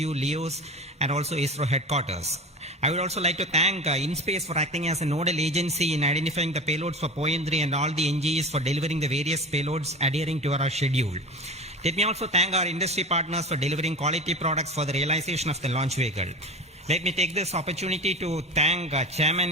LEOS, and also ISRO headquarters. I would also like to thank InSpace for acting as a nodal agency in identifying the payloads for POEM-3 and all the NGs for delivering the various payloads adhering to our schedule. Let me also thank our industry partners for delivering quality products for the realization of the launch vehicle. Let me take this opportunity to thank Chairman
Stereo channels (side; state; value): both; normal; correlation 0.31